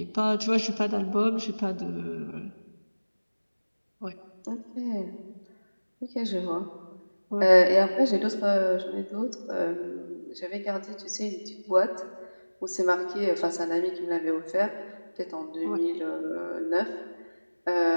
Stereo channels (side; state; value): both; inverted; correlation -1.00